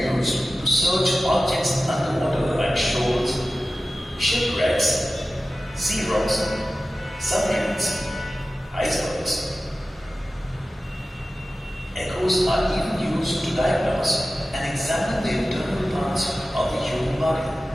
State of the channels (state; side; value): normal; both; correlation 0.95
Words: to search objects underwater like shoals, shipwrecks, sea rocks, submarines, icebergs. Echoes are even used to diagnose and examine the internal parts of the human body.